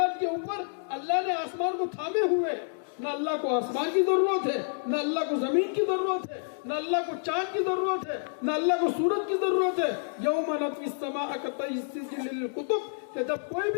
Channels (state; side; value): silent; right; digital silence